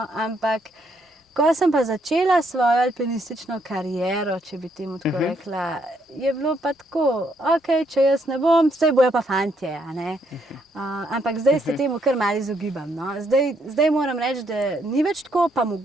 ampak ko sem pa začela svojo alpinistično kariero, če bi temu tako rekla, je bilo pa tako, ok, če jaz ne bom, saj bojo pa fantje. Ampak zdaj se temu kar malo izogibam. Zdaj moram reči, da ni več tako, pa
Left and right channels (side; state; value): both; normal; correlation 0.73